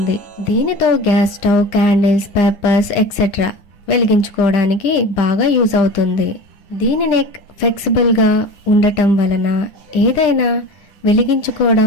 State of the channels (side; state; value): right; late; 9.8 ms